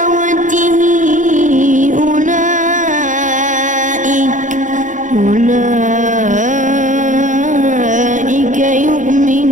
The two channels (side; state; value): left; late; 0.37 ms